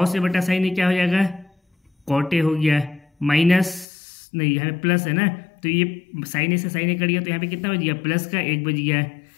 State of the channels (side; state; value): right; drops out; at 3.9 s